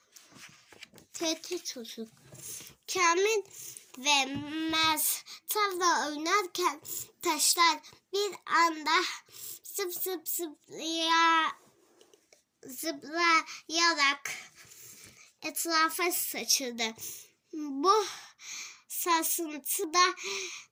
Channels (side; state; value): both; identical; correlation 1.00